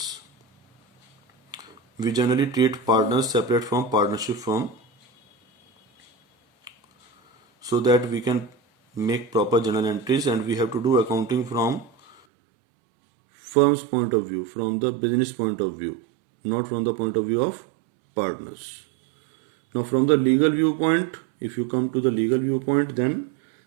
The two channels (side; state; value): left; drops out; at 12.2 s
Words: We generally treat partners separate from partnership firm so that we can make proper journal entries, and we have to do accounting from firm's point of view, from the business point of view, not from the point of view of partners. Now from the legal viewpoint, if you come to the legal viewpoint, then